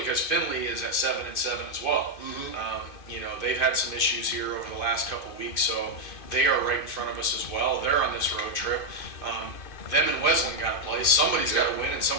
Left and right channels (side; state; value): right; late; 2.4 ms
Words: Findlay is at 7-7 as well. Mm-hmm. They've had some issues here over the last couple of weeks, so they are right in front of us as well. They're on this road trip. Them and Wesleyan got to play. Somebody's got to win and